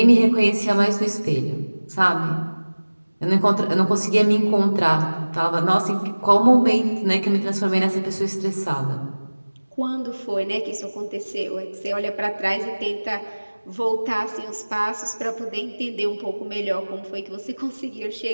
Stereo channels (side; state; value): both; inverted; correlation -1.00